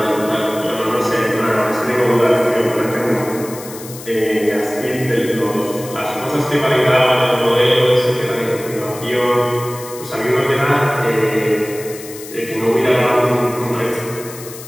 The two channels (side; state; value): left; noise; hiss, 15 dB below the sound